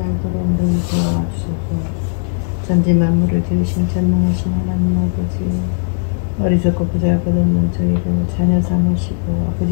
알도록 눈 도와주소서. 전지 만물을 지으신 전능하신 하나님 아버지, 어리석고 보잘것없는 저희를 자녀 삼으시고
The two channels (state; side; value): silent; right; digital silence